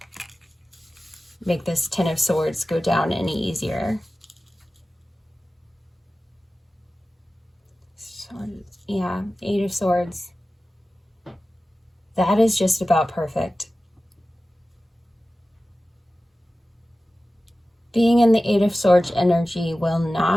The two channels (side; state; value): both; normal; correlation 0.95